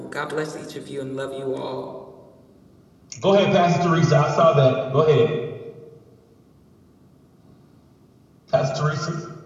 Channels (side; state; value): both; identical; correlation 1.00